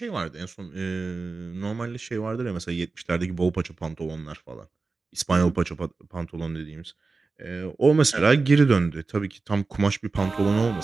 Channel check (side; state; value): left; quieter; 4.0 dB